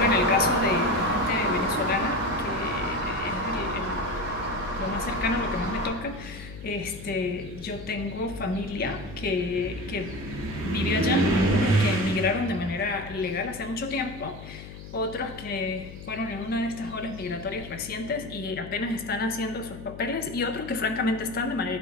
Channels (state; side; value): noise; left; hum, 13 dB below the sound